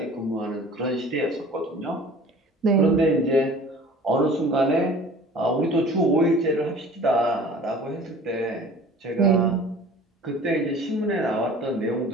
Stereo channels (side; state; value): both; normal; correlation 0.45